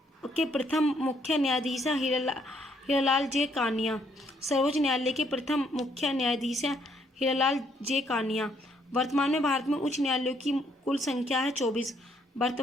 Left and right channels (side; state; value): both; normal; correlation 0.69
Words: प्रथम मुख्य न्यायाधीश हैं हीरालाल जे कानिया। सर्वोच्च न्यायालय के प्रथम मुख्य न्यायाधीश हैं हीरालाल जे कानिया। वर्तमान में भारत में उच्च न्यायालयों की कुल संख्या है 24।